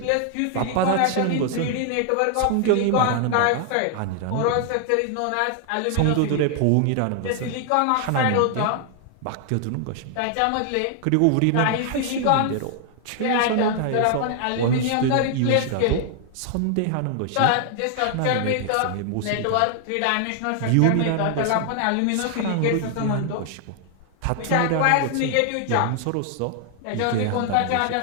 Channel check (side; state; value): both; different; correlation 0.00